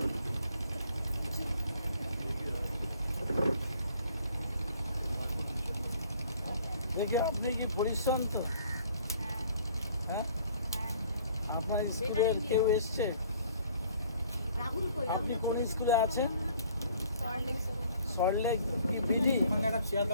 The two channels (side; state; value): both; inverted; correlation -0.56